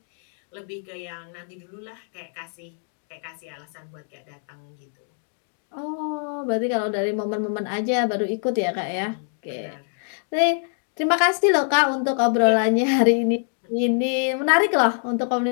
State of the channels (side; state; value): right; silent; 62 dB below the other